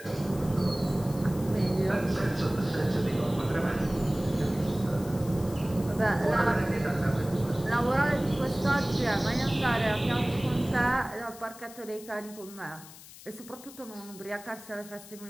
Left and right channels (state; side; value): noise; left; hiss, 18 dB below the sound